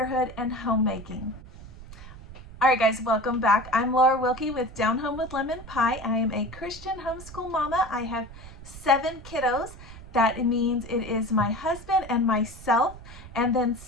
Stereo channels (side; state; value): right; noise; rumble, 16 dB below the sound